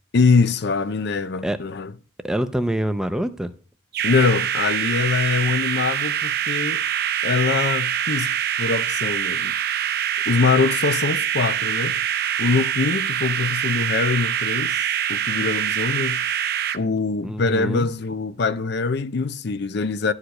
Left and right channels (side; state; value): both; normal; correlation 0.35